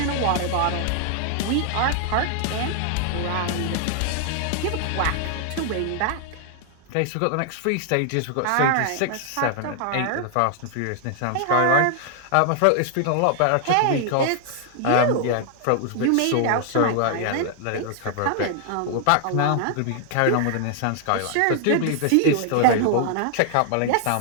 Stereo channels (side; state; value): both; different; correlation 0.00